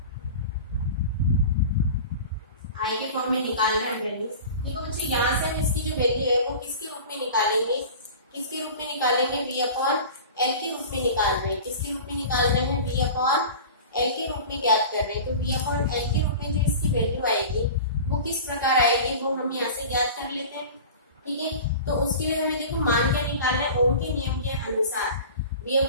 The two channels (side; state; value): both; inverted; correlation -0.37